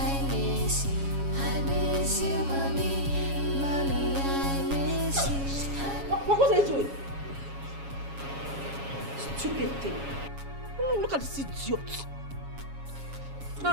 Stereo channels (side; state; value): left; late; 7.2 ms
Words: him. Look at this idiot. Now